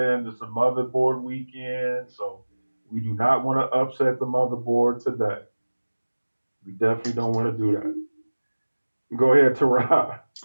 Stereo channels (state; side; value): inverted; both; correlation -1.00